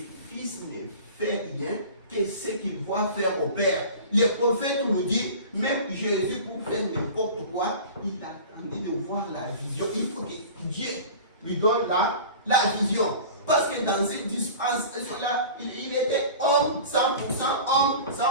fils ne fait rien que ce qu'il voit faire au Père. Le prophète nous dit, même Jésus, pour faire n'importe quoi, il attendait de voir la vision. Il faut que Dieu lui donne la vision. Parce que dans cette dispensation-là, il était homme 100%, homme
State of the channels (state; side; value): inverted; both; correlation -0.38